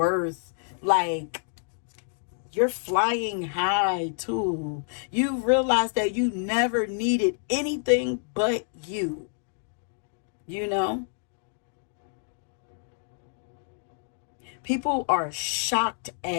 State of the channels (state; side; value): silent; right; digital silence